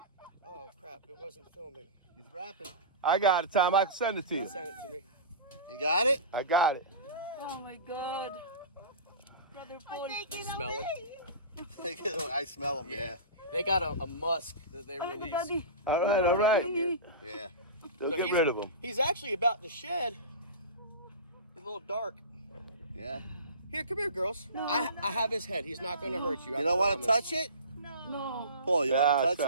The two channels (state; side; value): inverted; both; correlation -0.31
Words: Oh crap! It wasn't filming. He's rapping. I got it, Tom. I can send it to you. Send it to me. You got it? I got it. Oh my God! Brother Paul. Smell it. I smell him, yeah. They got a musk that they release. Daddy. All right, all right. Yeah. Don't So get rid of him. He's actually about to shed. He's a little dark. Yeah. Here, come here, girls. I have his head. He's not going to hurt you. You don't want to touch it? No. Paul, you want to That's touch